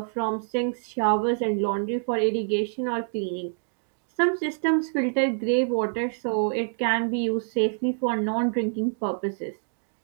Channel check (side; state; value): left; silent; digital silence